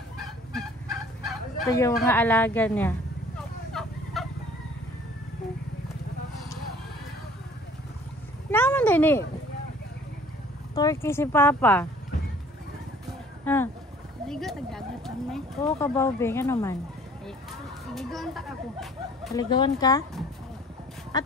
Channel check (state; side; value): normal; both; correlation 0.52